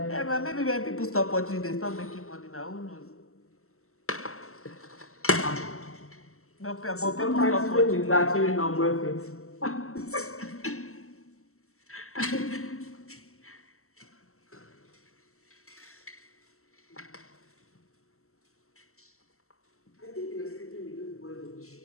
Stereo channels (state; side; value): late; right; 0.63 ms